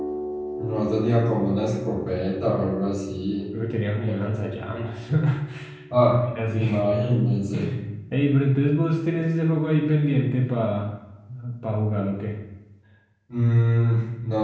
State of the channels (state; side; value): identical; both; correlation 1.00